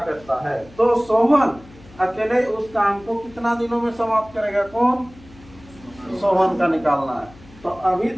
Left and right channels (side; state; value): left; noise; hum, 23 dB below the sound